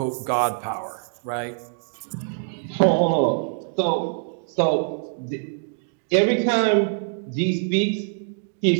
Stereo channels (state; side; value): silent; left; digital silence